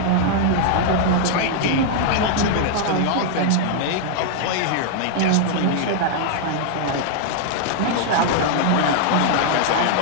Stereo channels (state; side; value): different; both; correlation -0.01